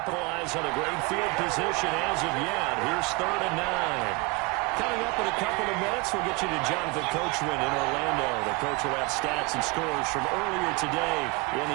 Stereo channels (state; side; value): quieter; left; 26.8 dB